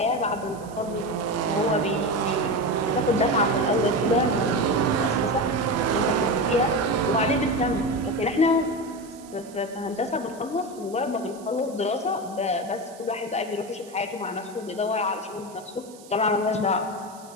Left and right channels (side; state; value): right; noise; hiss, 22 dB below the sound